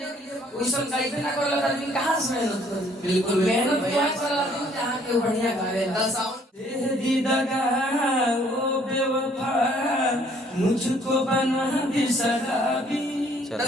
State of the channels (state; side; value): normal; both; correlation 0.62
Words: के लिए। वैसा गाइबे ना कर लगा आदमी कहां से मेहनत करे? बिल्कुल मेहनत क्या कर आदमी जहां के बढ़िया गावेला। दे दी दगा ओ बेवफा मुझको बना दी शराबी।